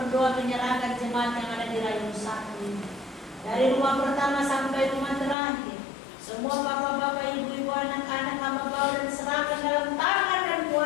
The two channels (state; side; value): drops out; right; at 5.4 s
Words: menyerahkan jemaat yang ada di Rayong Satu ini, dari rumah pertama sampai rumah terakhir. Semua bapak-bapak, ibu-ibu, anak-anak hamba bawa dan serahkan dalam tangan dan